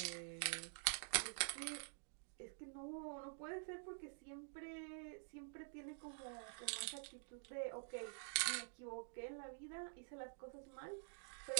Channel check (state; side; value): silent; left; digital silence